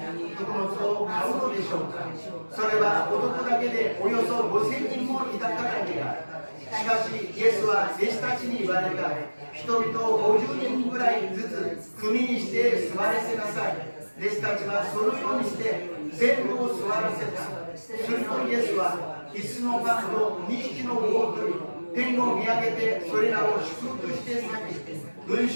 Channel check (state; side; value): inverted; both; correlation -1.00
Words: 穀物を買うのでしょうか。それは男だけでおよそ5000人もいたからにある。しかしイエスは弟子たちに言われた。人々を50人ぐらいずつ組にして座らせなさい。弟子たちはそのようにして全部を座らせた。するとイエスは5つのパンと2匹の魚を取り天を見上げてそれらを祝福して裂き群